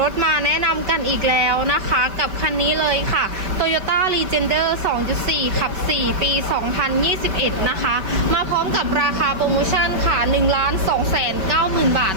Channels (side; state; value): left; late; 5.2 ms